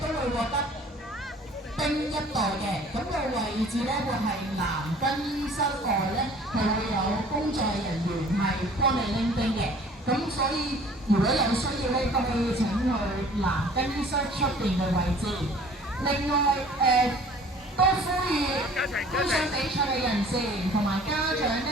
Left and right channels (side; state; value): both; normal; correlation 0.51